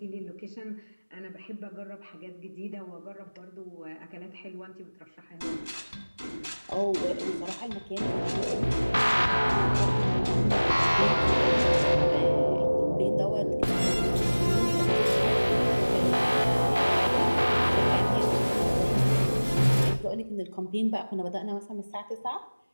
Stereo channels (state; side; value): inverted; both; correlation -1.00